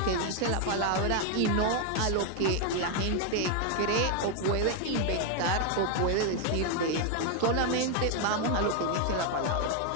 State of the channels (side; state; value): both; different; correlation 0.01